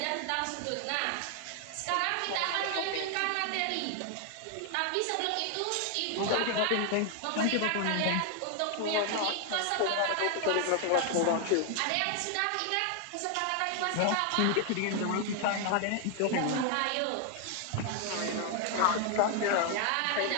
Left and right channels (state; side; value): different; both; correlation 0.00